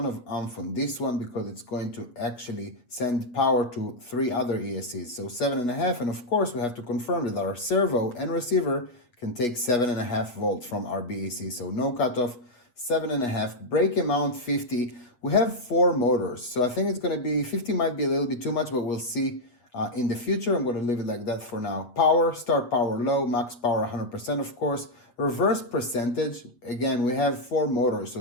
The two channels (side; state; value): right; late; 8.1 ms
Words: of amp on this one because it's going to actually send power to 3 other ESCs. So 7.5, and of course we have to confirm that our servo and receiver can take 7.5 volts from our BEC. So no cutoff, 7.5. Brake amount 50. We have 4 motors, so I think it's going to be 50. Might be a little bit too much, but we'll see. In the future, I'm going to leave it like that for now. Power, start power low, max power 100%, of course. Reverse percentage, again, we have 4 motors,